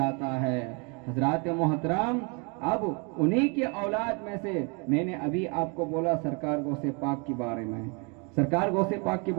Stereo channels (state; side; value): quieter; left; 33.5 dB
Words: है। हजरात मोहतरम, अब उन्हीं के औलाद में से मैंने अभी आपको बोला सरकार गौसे पाक के बारे में, सरकार गौसे पाक के